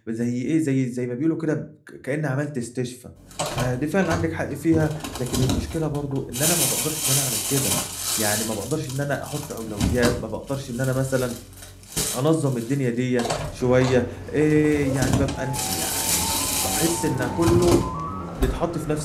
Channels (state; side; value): identical; both; correlation 1.00